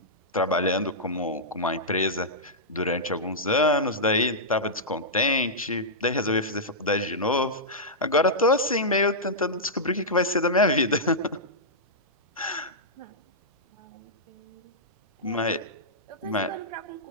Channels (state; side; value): normal; both; correlation -0.11